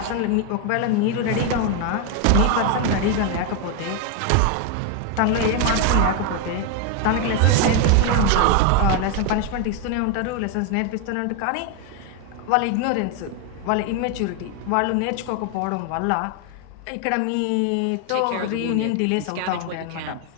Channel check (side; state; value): both; different; correlation 0.01